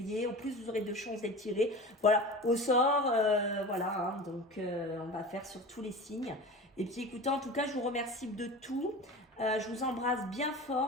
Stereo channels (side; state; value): both; normal; correlation 0.33